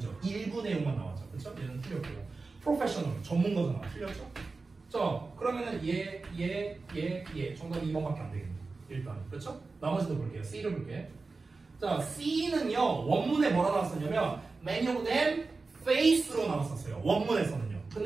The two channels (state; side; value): quieter; left; 3.9 dB